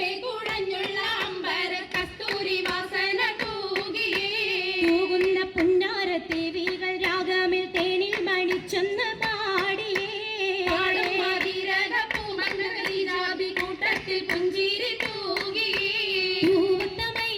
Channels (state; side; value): identical; both; correlation 1.00